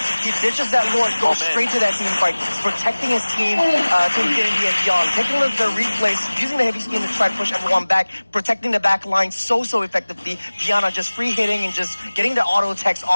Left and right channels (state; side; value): inverted; both; correlation -1.00